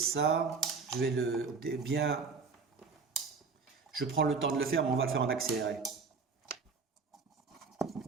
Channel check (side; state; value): left; quieter; 4.8 dB